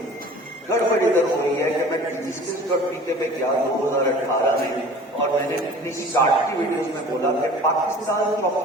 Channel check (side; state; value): both; normal; correlation 0.44